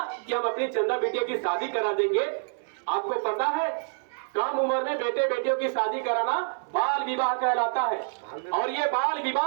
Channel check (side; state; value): left; silent; 60 dB below the other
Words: कि हम अपनी चंदा बिटिया की शादी करा देंगे, आपको पता है कम उम्र में बेटे बेटियों की शादी कराना बाल विवाह कहलाता है। और ये बाल